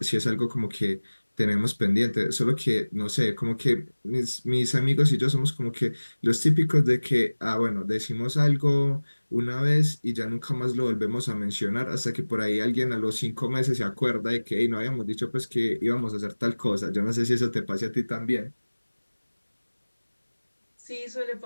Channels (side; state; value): both; inverted; correlation -1.00